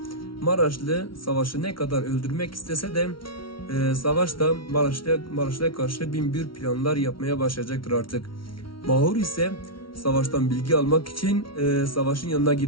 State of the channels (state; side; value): late; right; 0.74 ms